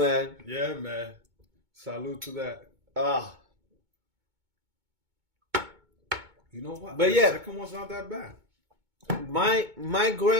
Yeah, man. Salud to that. You know what? But the second one's not that bad. My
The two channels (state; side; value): late; left; 2.2 ms